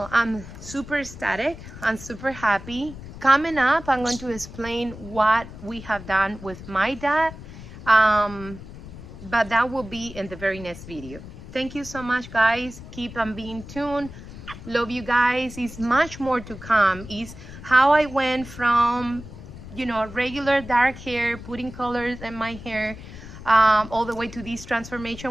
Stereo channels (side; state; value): left; noise; rumble, 14 dB below the sound